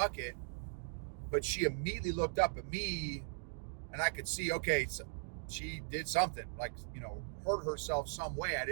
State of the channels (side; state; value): left; silent; digital silence